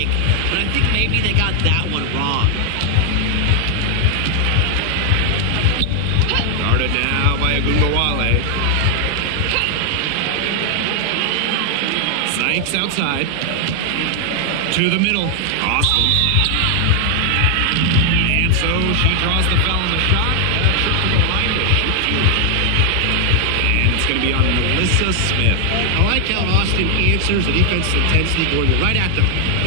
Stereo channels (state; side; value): different; both; correlation 0.00